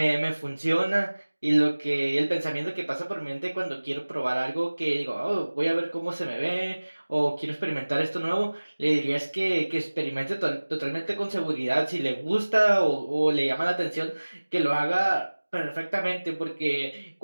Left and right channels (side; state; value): both; inverted; correlation -1.00